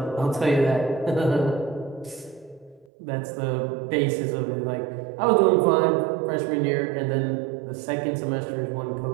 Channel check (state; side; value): drops out; left; at 2.9 s